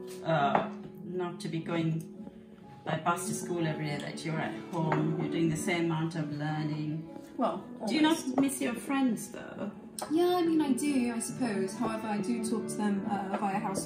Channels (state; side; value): identical; both; correlation 1.00